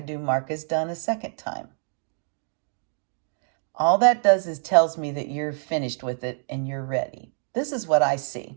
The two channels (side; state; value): left; silent; 61 dB below the other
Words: mark as done a second time. All that does is tells me that you're finished with it and you're ready. This is what I